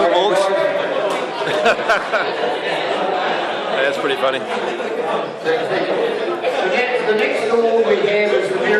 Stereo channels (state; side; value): identical; both; correlation 1.00